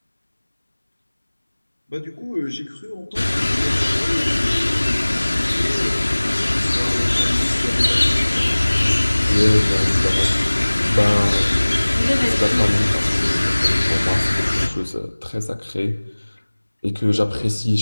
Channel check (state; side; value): inverted; both; correlation -1.00